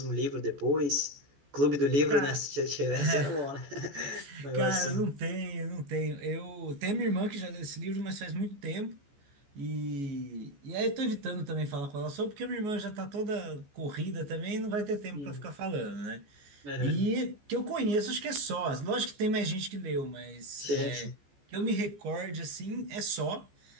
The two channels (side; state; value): left; late; 14 ms